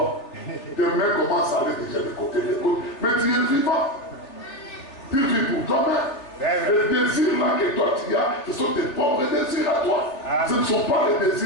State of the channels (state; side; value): late; right; 3.4 ms